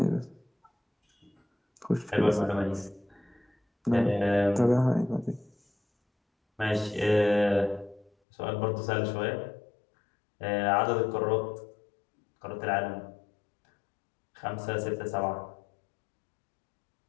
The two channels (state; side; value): drops out; right; at 8.1 s